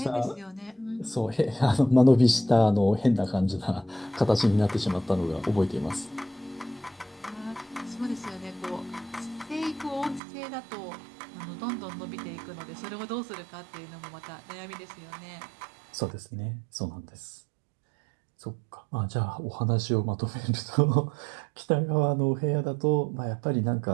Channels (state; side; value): drops out; left; at 10.2 s